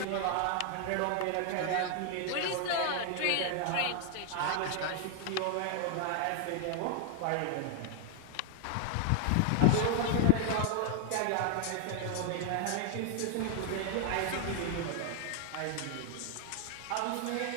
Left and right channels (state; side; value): different; both; correlation 0.00